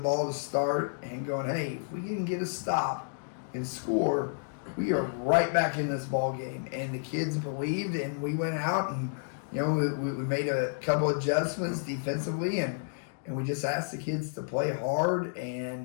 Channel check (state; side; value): silent; right; digital silence